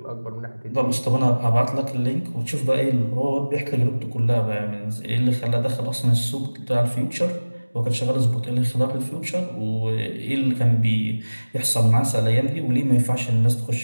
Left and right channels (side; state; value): both; inverted; correlation -1.00